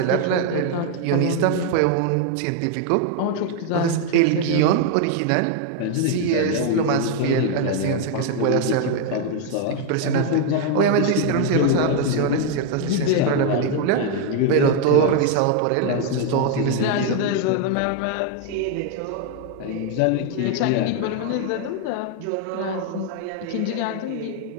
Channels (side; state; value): both; different; correlation 0.00